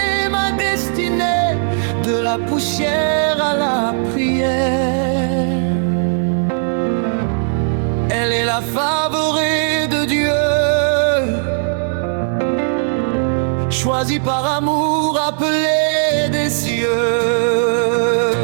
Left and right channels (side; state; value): left; silent; 59 dB below the other